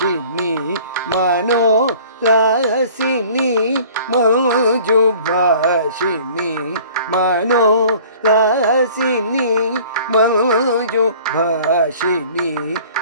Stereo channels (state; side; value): inverted; both; correlation -0.49